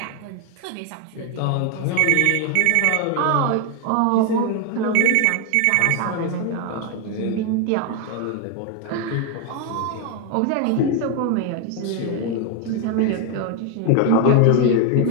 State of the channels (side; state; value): both; different; correlation 0.01